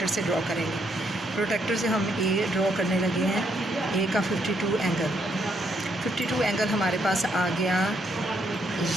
से ड्रॉ करेंगे। प्रोटेक्टर से हम A ड्रॉ करने लगे हैं, A का 52 एंगल हमारे पास आ गया।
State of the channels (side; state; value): both; normal; correlation 0.74